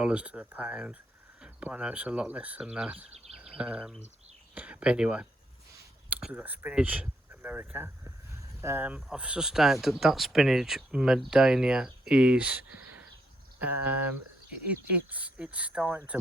pound, but I know it's a lot less than that. But anyway, we've got Spinach America. I've sustained that Spinach Medania is it's starting to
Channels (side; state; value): both; normal; correlation 0.75